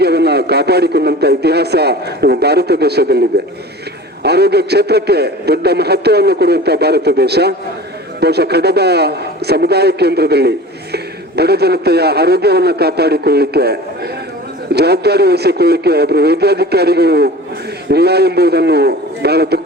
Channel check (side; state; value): both; normal; correlation 0.38